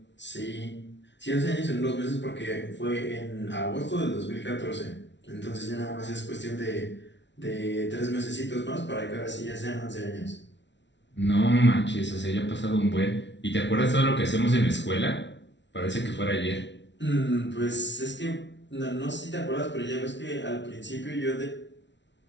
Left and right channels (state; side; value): late; right; 0.52 ms